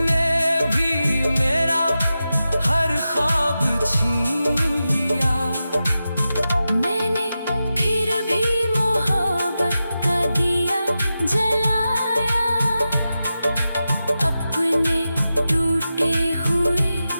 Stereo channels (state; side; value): inverted; both; correlation -0.92